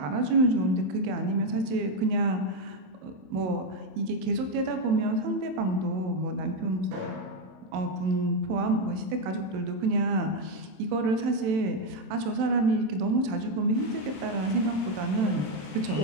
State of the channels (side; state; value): left; late; 27 ms